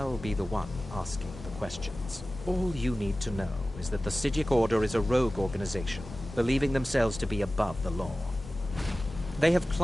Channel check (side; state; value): both; normal; correlation 0.96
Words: be the one asking the questions. All you need to know is that the Psijic Order is a rogue organization, believing themselves to be above the law. They have